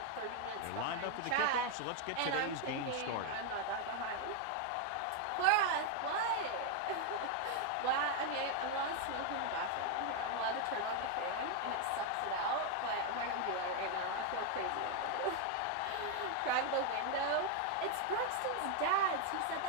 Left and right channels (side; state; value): both; different; correlation 0.01